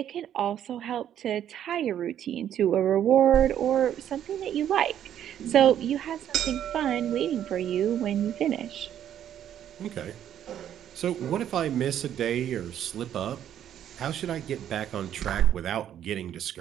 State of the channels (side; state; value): left; quieter; 10.4 dB